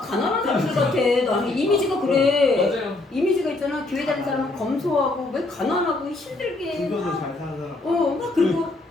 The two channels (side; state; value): right; quieter; 3.0 dB